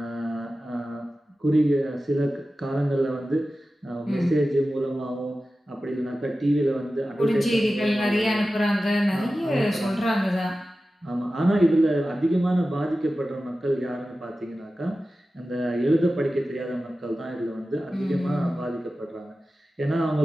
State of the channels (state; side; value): normal; both; correlation 0.94